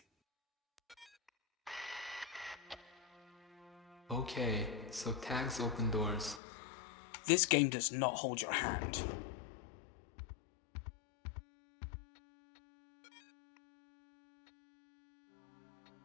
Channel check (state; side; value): drops out; right; at 6.4 s